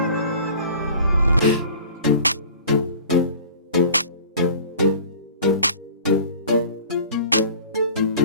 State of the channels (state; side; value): inverted; both; correlation -0.44